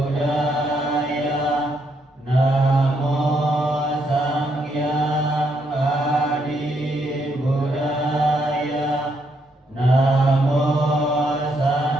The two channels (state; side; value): normal; both; correlation 0.75